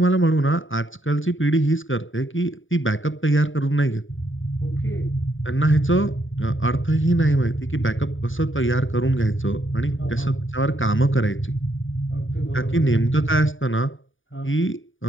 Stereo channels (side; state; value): right; late; 0.57 ms